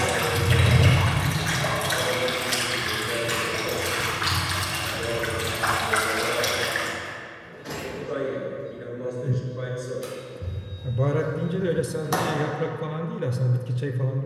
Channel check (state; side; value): identical; both; correlation 1.00